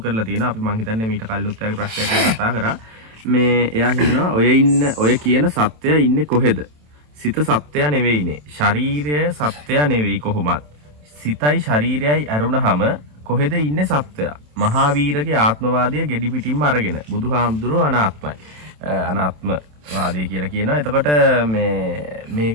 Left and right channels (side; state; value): left; late; 27 ms